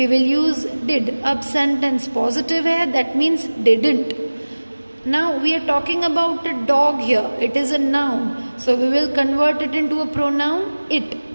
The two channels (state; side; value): inverted; both; correlation -1.00